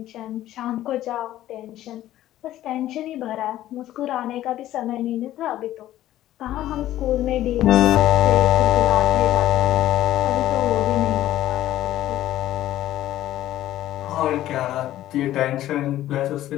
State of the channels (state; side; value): quieter; right; 13.7 dB